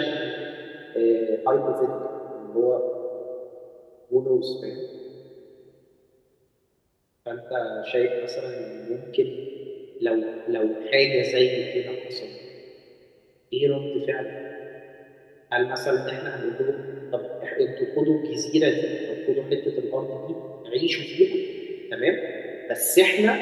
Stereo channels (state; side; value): identical; both; correlation 1.00